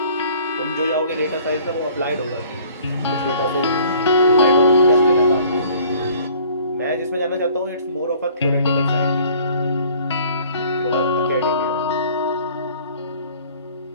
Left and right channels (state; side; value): inverted; both; correlation -0.54